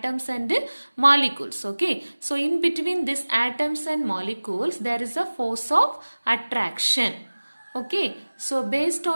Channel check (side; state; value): both; inverted; correlation -1.00